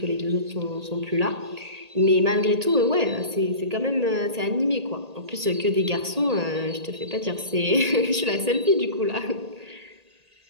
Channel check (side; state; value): left; late; 1.8 ms